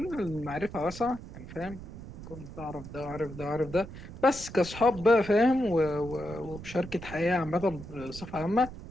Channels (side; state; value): right; noise; rumble, 13 dB below the sound